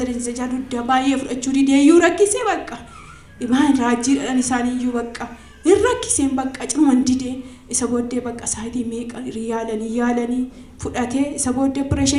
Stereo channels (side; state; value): both; identical; correlation 1.00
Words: jaaluddaa baay'ee fudhachuu dide iyyuu rakkisee bakka ibaan raajiidhaan isaaniiyyuu bakka hin rakkiseen bakka ciman dide isa booddee bakka saayitii meeqa yaalanii fudhatee isa booddee